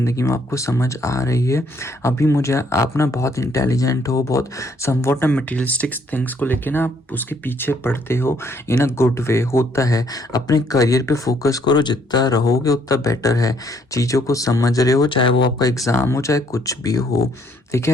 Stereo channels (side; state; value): both; normal; correlation 0.67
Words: में, आपको समझ आ रही है। अभी मुझे आप ना बहुत इंटेलिजेंट हो, बहुत समवॉट मटेरियलिस्टिक थिंग्स को लेके ना आप उसके पीछे पड़ते हो इन अ गुड वे। होता है, अपने करियर पे फोकस करो, जितना रहोगे उतना बेटर है। चीज़ों को समझ रहे हो, चाहे वो आपका एग्ज़ाम हो चाहे कुछ भी हो, ठीक